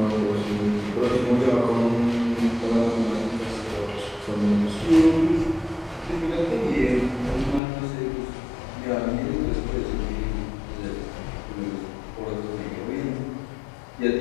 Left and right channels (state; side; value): drops out; right; at 7.6 s